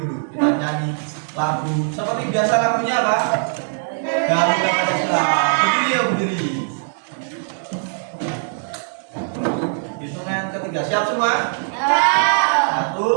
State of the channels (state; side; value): silent; left; 65 dB below the other